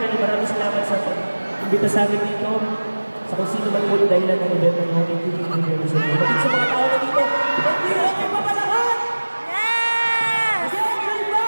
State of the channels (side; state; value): both; inverted; correlation -1.00